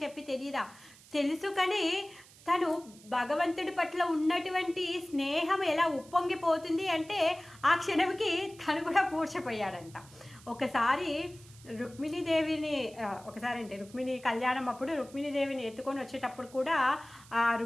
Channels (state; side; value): noise; right; hiss, 23 dB below the sound